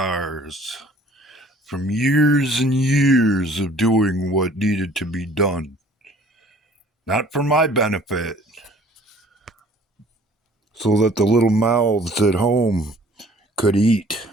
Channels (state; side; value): normal; both; correlation 0.53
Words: from years and years of doing what needed to be done. Not for my benefit, so that the little mouths at home could eat.